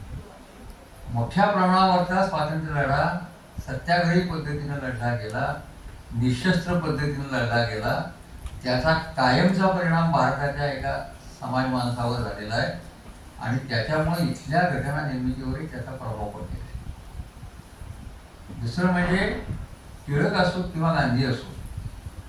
मोठ्या प्रमाणावरचा स्वातंत्र्य लढा सत्याग्रही पद्धतीनं लढला गेला, निशस्त्र पद्धतीनं लढला गेला. त्याचा कायमचा परिणाम भारताच्या एका समाज माणसावर झालेला आहे आणि त्याच्यामुळे इथल्या घटना निर्मितीवरही त्याचा प्रभाव पडलेला आहे. दुसरं म्हणजे टिळक असो किंवा गांधी असो,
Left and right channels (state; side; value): identical; both; correlation 1.00